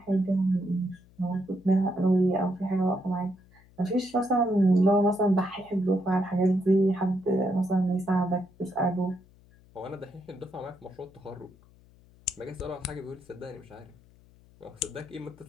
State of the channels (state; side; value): noise; left; hum, 27 dB below the sound